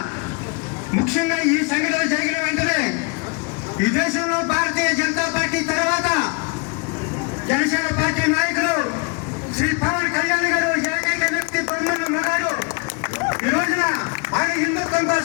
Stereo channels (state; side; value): quieter; right; 31.5 dB